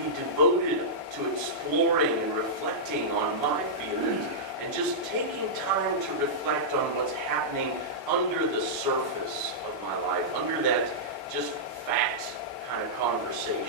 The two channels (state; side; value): normal; both; correlation -0.12